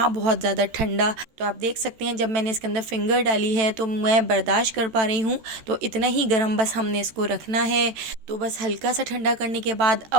बहुत ज़्यादा ठंडा। तो आप देख सकते हैं जब मैंने इसके अंदर फिंगर डाली है तो मैं बर्दाश्त कर पा रही हूँ। तो इतना ही गर्म बस हमने इसको रखना है। तो बस हल्का सा ठंडा करने के बाद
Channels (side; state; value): left; late; 13 ms